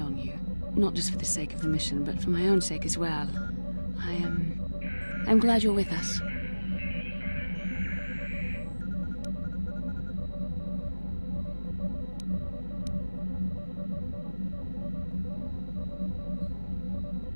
on you. Not just for the sake of the mission, but for my own sake as well. I'm glad you're with us.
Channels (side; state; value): both; inverted; correlation -1.00